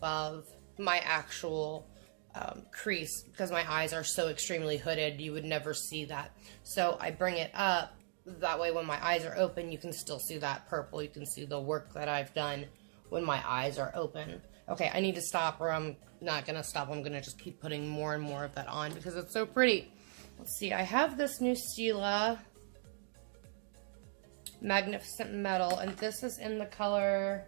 my actual crease, because my eyes are so extremely hooded, you would never see that. So I bring it up, that way when my eyes are open, you can still see that purple. You can see the work that I've done when my eyes are open. Okay, I need to stop, or I'm not gonna stop. I'm gonna just keep putting more and more of that on because it's so pretty. Let's see, I have this new Stila Magnificent Metal, and this is in the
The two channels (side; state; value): left; silent; 52 dB below the other